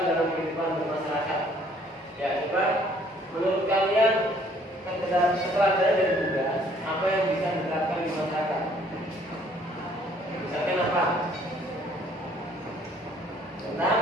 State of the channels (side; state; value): both; normal; correlation 0.60